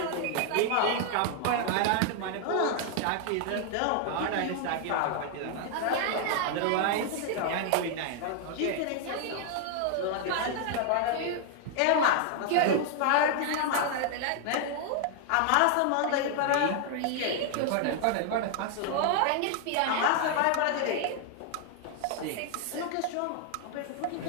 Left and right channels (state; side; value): different; both; correlation 0.00